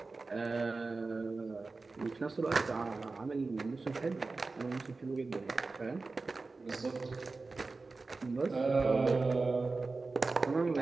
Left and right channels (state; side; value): quieter; left; 3.8 dB